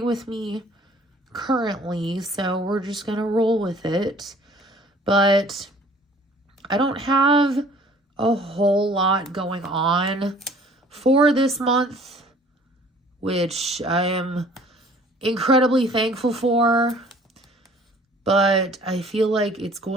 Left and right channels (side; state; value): both; normal; correlation 0.53